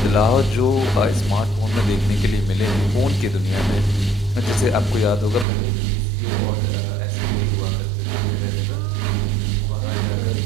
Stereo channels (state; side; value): drops out; left; at 5.5 s